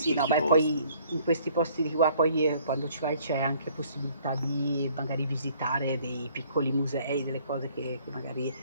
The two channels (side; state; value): both; inverted; correlation -0.59